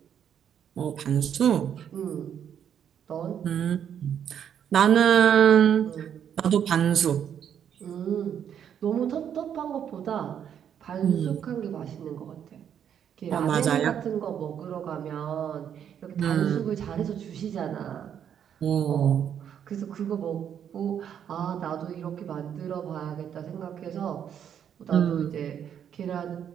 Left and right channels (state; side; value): quieter; left; 8.9 dB